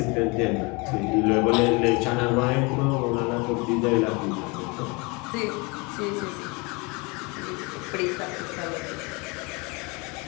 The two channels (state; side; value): quieter; right; 28.2 dB